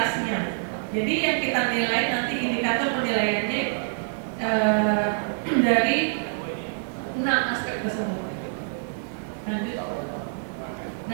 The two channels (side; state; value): left; silent; 61 dB below the other